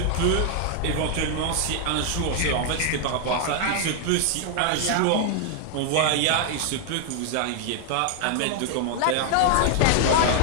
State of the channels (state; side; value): different; both; correlation 0.00